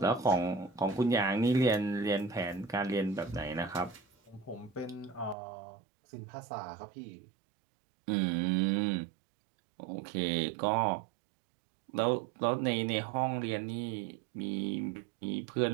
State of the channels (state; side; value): drops out; left; at 5.4 s